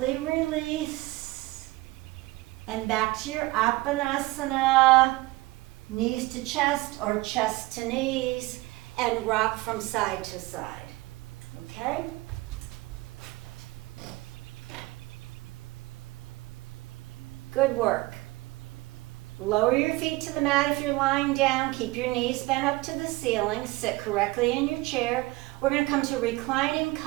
release. And back to your Apanasana, knees to chest or chest to knees, and rock from side to side. Okay? Good work. Lower your feet to the mat if you're lying down. Keep your knees bent up to the ceiling. Sit correctly in your chair. We're going to come to reclining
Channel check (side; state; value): left; quieter; 20.8 dB